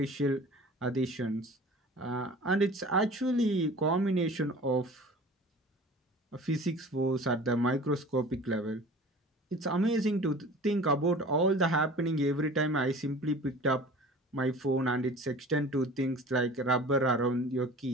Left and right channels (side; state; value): both; normal; correlation 0.42